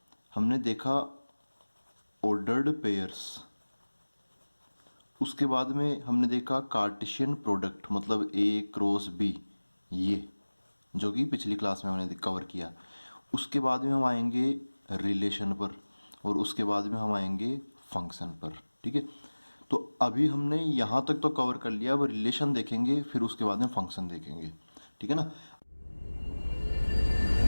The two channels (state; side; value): inverted; both; correlation -1.00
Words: हमने देखा ऑर्डर्ड पेयर्स, उसके बाद में हमने देखा कार्टेशियन प्रोडक्ट मतलब ए क्रॉस बी, ये जो कि पिछली क्लास में हमने कवर किया। उसके बाद में हम आएंगे रिलेशन पर, और उसके बाद में हम आएंगे फंक्शन पर। ठीक है, तो अभी हमने यहाँ तक तो कवर कर लिया। अब रिलेशन देखेंगे, फिर उसके बाद में फंक्शन देखेंगे। ठीक है ना।